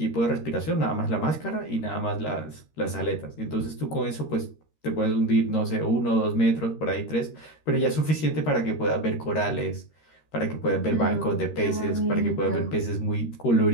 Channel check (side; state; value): right; late; 13 ms